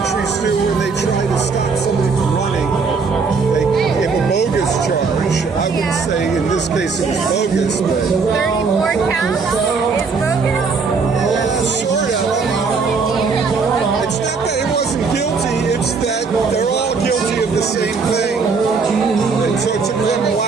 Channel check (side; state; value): left; quieter; 4.8 dB